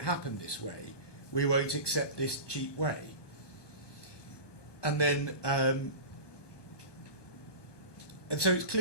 happen this way. We won't accept this cheap way. And then, and so it's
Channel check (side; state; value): right; late; 1.2 ms